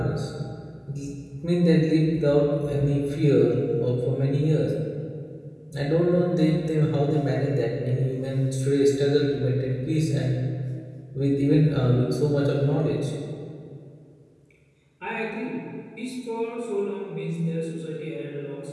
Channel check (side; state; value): both; identical; correlation 1.00